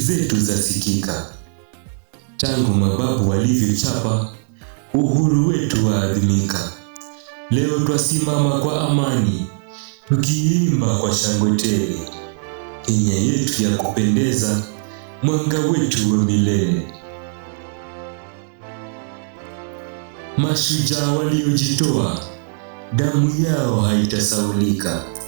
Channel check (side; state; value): left; silent; digital silence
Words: zasikika. Tangu mababu walivyochapa, uhuru wetu waadhimika. Leo twasimama kwa amani, tukiimba kwa shangwe tele. Kenya yetu ya kupendeza, mwanga wetu wa milele. Mashujaa waliojitoa, damu yao haitasaulika.